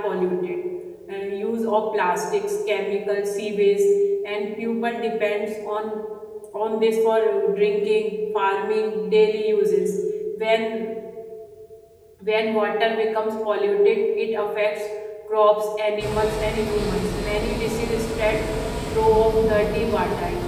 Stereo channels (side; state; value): both; identical; correlation 1.00